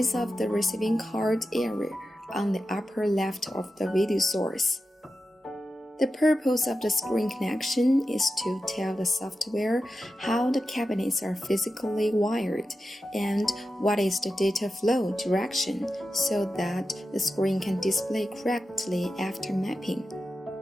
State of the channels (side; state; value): both; normal; correlation 0.91